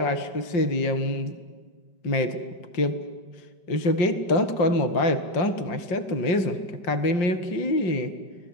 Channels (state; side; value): late; right; 5.2 ms